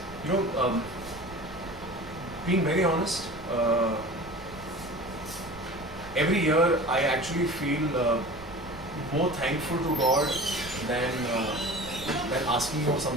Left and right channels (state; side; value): noise; right; rumble, 19 dB below the sound